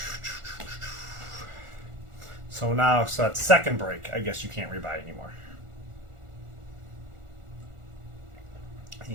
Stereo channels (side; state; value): left; late; 1.4 ms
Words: So now, so that's second break. I guess you can't rebuy anymore.